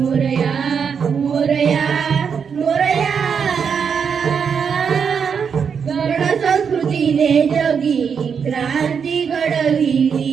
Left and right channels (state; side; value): quieter; left; 6.6 dB